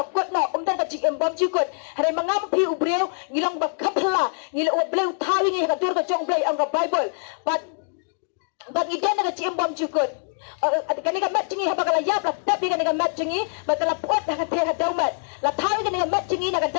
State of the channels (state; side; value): silent; right; digital silence